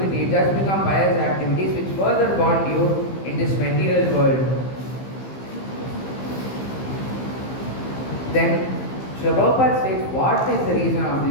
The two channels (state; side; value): late; right; 15 ms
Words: it does become pious activities which further bond you in this material world. Then Srila Prabhupada states, what is the reason of